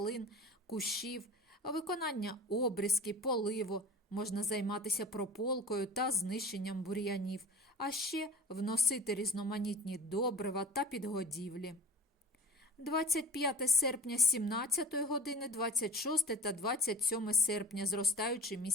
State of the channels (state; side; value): normal; both; correlation 0.37